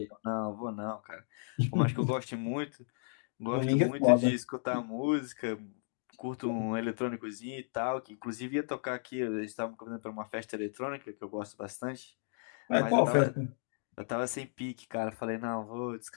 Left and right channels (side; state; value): right; silent; digital silence